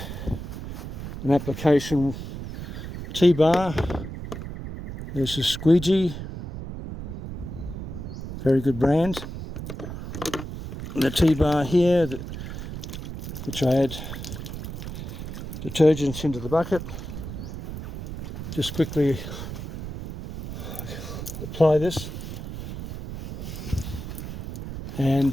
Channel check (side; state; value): right; noise; rumble, 8 dB below the sound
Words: an application T-bar. There's a squeegee, very good brand. And the T-bar here, which I add detergents into the bucket. Just quickly apply this,